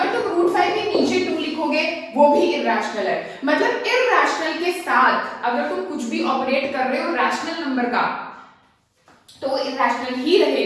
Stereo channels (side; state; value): both; identical; correlation 1.00